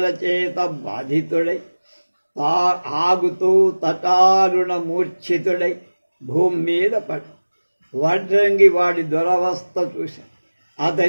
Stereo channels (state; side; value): inverted; both; correlation -1.00